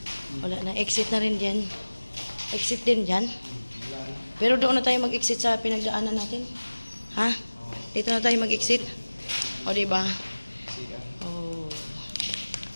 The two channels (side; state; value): both; inverted; correlation -1.00